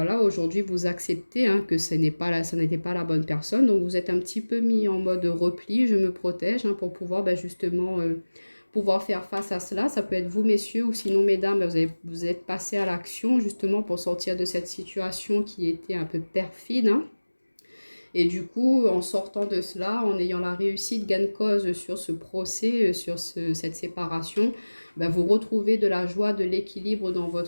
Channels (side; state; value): both; inverted; correlation -1.00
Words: aujourd'hui, vous acceptez, hein, que ça n'était pas la bonne personne. Donc, vous êtes un petit peu mis en mode repli, je me protège, hein, pour pouvoir justement pouvoir faire face à cela. Ça peut être vous, messieurs, ou sinon, mesdames, vous êtes passé à l'action justement pour sortir de cette situation qui était un peu perfide, hein. Et du coup, en sortant de cela, en ayant la réussite gain de cause sur ce procès, sur cette séparation, vous retrouvez de la joie, de l'équilibre dans